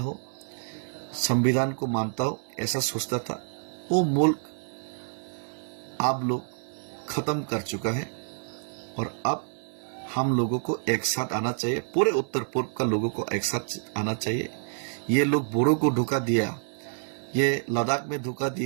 संविधान को मानता हो, ऐसा सोचता था, वो मुल्क आप लोग खत्म कर चुका है। और अब हम लोगों को एक साथ आना चाहिए, पूरे उत्तर पूर्व का लोगों को एक साथ आना चाहिए। ये लोग बोडो को धोखा दिया, ये लद्दाख में धोखा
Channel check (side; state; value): left; silent; 57 dB below the other